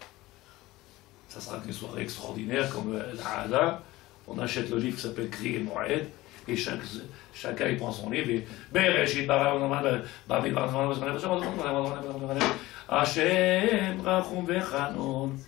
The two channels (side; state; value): right; quieter; 18.4 dB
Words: Ça sera qu'une soirée extraordinaire comme la Hada. On achète le livre qui s'appelle Kri et Moed, et chacun il prend son livre et Hashem Rachum Vechanon.